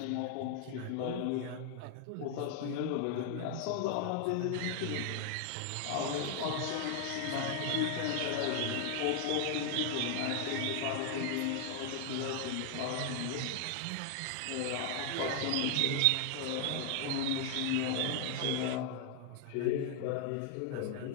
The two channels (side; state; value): both; different; correlation 0.00